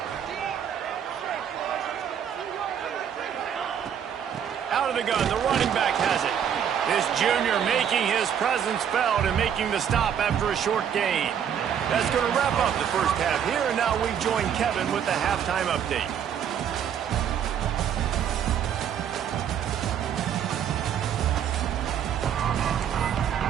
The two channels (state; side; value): quieter; left; 8.7 dB